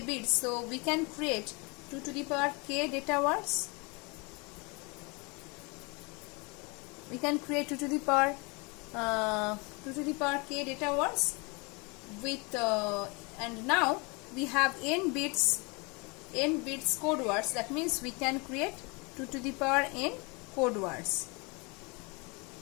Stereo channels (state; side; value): quieter; right; 29.3 dB